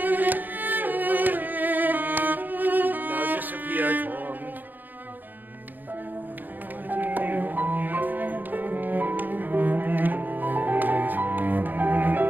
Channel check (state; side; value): late; left; 0.087 ms